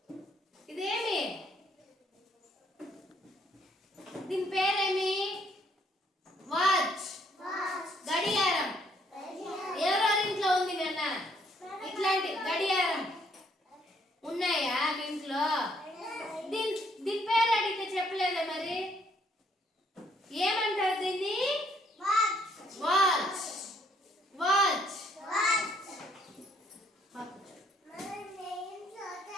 Idemi. Din peremi. Watch. Watch. గడియారం. ఎవరెవరి ఇంట్లో ఉంది నాన్న? ఇట్లాంటి గడియారం ఉన్నాయా మీ ఇంట్లో? దీని పేరు అడిగితే చెప్పలేదా మరి? ఏమంటారు దీన్ని? Watch. వాచ్. వాచ్. Watch.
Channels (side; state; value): both; normal; correlation 0.67